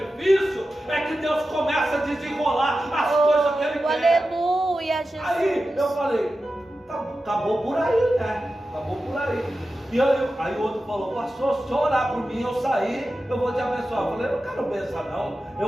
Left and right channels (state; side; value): normal; both; correlation 0.93